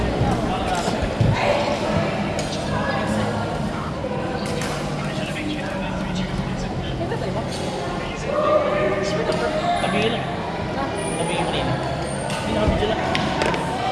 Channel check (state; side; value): identical; both; correlation 1.00